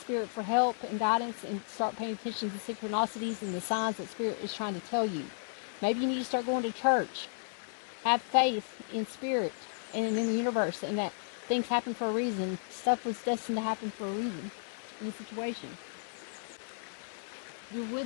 for help and guidance, and start paying attention to the synchronicities and the signs that Spirit is trying to tell you. Maybe you need to start going to church. Have faith in Spirit and in the universe, and that things happen for a reason. Stuff was destined to happen for a reason in the situation. Your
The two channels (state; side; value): silent; right; digital silence